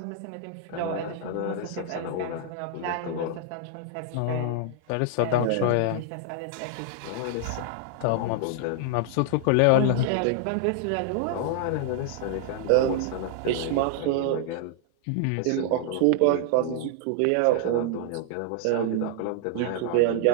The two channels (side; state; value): both; different; correlation 0.00